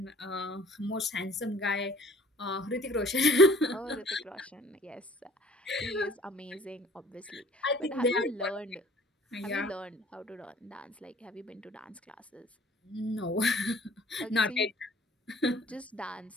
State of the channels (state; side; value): normal; both; correlation 0.52